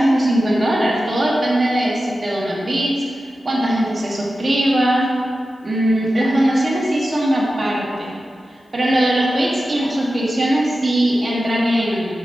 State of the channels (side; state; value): both; normal; correlation 0.93